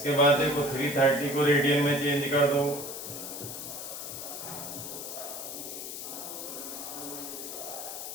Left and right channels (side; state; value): left; noise; hiss, 7 dB below the sound